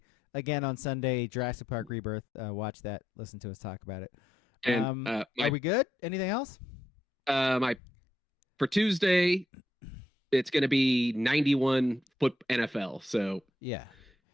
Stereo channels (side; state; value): both; normal; correlation 0.80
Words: again on Sunday, Jurassic Park Rebirth. Watch that. Listen to us talk about it. And are we good? Anything else? For Tuesday, it's going to be 91 foot NFL. So yeah,